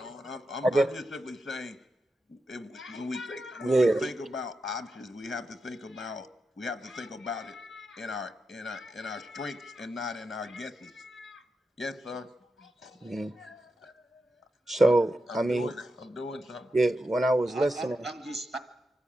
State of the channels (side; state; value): both; normal; correlation 0.88